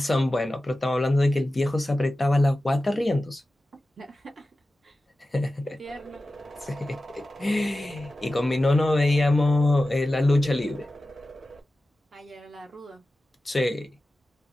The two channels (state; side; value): normal; both; correlation 0.94